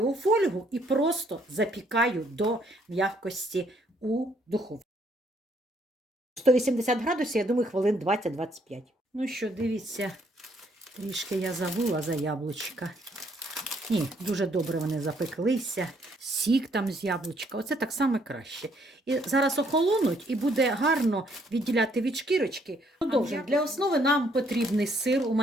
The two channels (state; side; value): normal; both; correlation 0.68